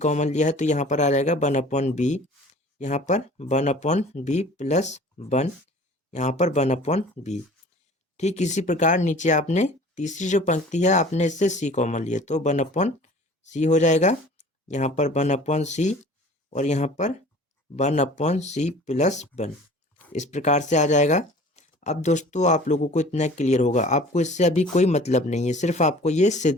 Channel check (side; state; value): both; normal; correlation 0.46